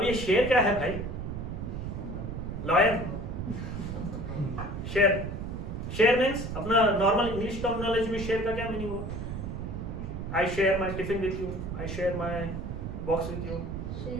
ये share क्या है भाई? लॉयन। शेयर मीन्स अपना नॉर्मल इंग्लिश टर्मिनोलॉजी में शेयर का क्या मीनिंग हुआ? I share my tiffin with you, I share my box with you.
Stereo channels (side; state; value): right; noise; rumble, 5 dB below the sound